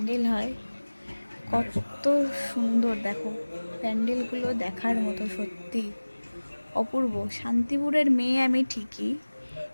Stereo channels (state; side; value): inverted; both; correlation -1.00